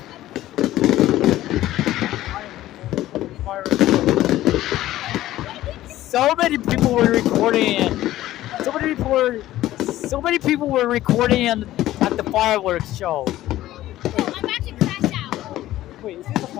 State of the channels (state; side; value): quieter; right; 14.7 dB